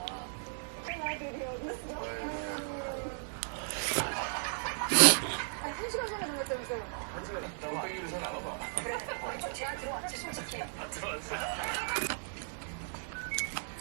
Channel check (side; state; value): left; silent; digital silence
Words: 한 시간 전에 정했다면서요? 한 시간 있다고 빼기를 잘 나눠봐. 제가 들어왔지, 솔직히. 들어왔어.